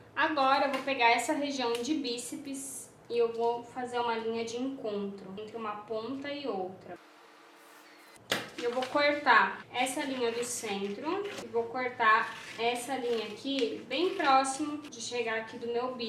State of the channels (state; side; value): identical; both; correlation 1.00